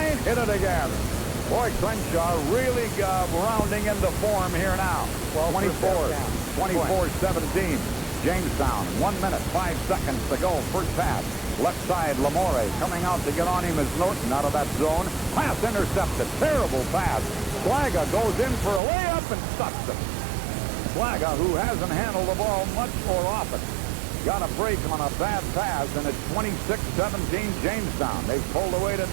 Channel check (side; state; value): left; drops out; at 18.8 s